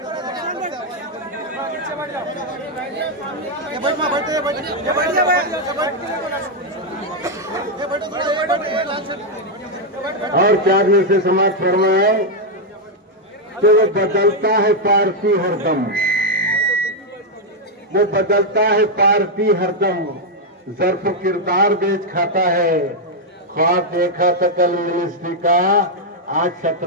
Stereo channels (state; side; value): normal; both; correlation -0.01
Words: और 4 में से समाज फरमाए कि वो बदलता है पार्टी हरदम, वो बदलता है पार्टी हरदम, ज़र्फ किरदार बेच खाता है। ख्वाब देखा था कल मिनिस्ट्री का, आज